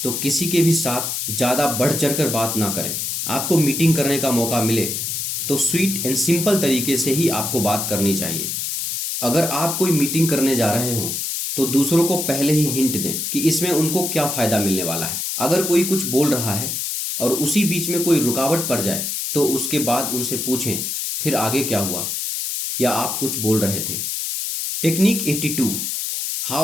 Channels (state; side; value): noise; left; hiss, 2 dB below the sound